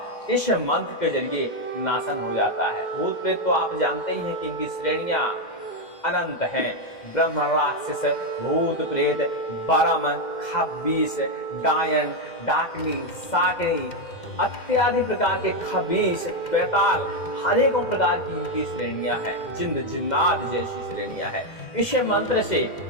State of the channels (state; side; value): late; right; 2.1 ms